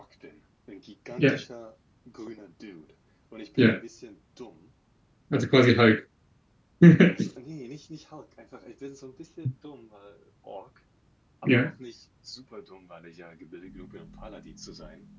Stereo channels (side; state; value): both; identical; correlation 1.00